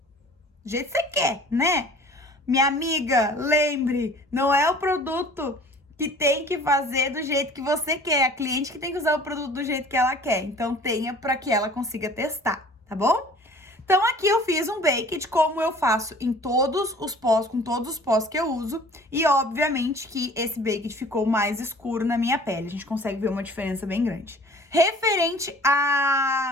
você quer, né? Minha amiga, lembre, não é o produto que tem que fazer do jeito que você quer. A cliente que tem que usar o produto do jeito que ela quer. Então, tenha para que ela consiga testar, tá bom? Então, aqui eu fiz um baked, como eu faço em todos os pós, com todos os pós que eu uso. E, obviamente, que esse baked ficou mais escuro na minha pele. A gente consegue ver uma diferença bem grande. Referente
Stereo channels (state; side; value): normal; both; correlation 0.48